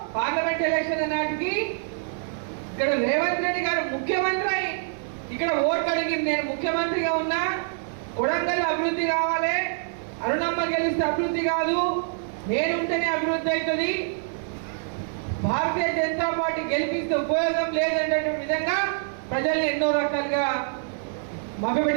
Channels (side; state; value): left; silent; digital silence